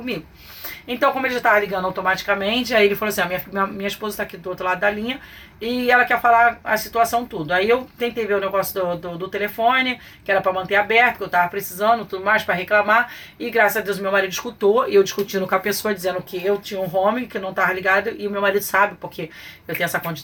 Então, como ele já tava ligando automaticamente, aí ele falou assim, minha esposa tá aqui do outro lado da linha, e ela quer falar a situação tudo. Aí eu tentei ver o negócio do telefone, que era pra manter aberto, que eu tava precisando, tudo mais, pra reclamar, e graças a Deus meu marido escutou, e eu discutindo com a pessoa, dizendo que eu tinha um home, que não tava ligado, e o meu marido sabe, porque eu tenho essa conta de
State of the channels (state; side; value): identical; both; correlation 1.00